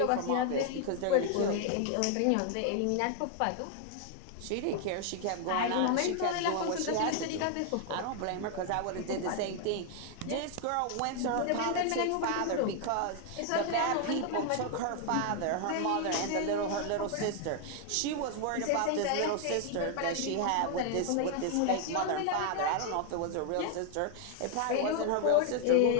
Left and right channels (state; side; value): different; both; correlation 0.00